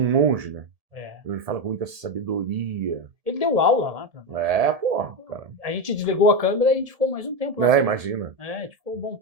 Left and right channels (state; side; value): late; left; 1.7 ms